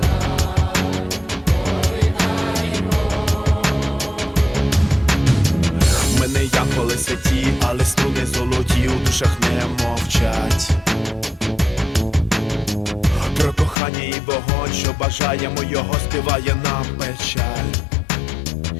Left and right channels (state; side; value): drops out; right; at 13.8 s